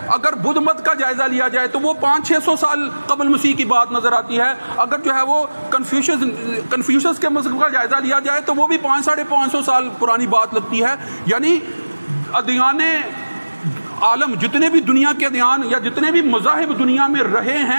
اگر بدھ مت کا جائزہ لیا جائے تو وہ 500-600 سال قبل مسیح کی بات نظر آتی ہے۔ اگر جو ہے وہ کنفیوشس کے مذہب کا جائزہ لیا جائے تو وہ بھی 500-550 سال پرانی بات لگتی ہے۔ یعنی ادیان عالم جتنے بھی دنیا کے ادیان یا جتنے بھی مذاہب دنیا میں رہے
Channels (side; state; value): both; inverted; correlation -1.00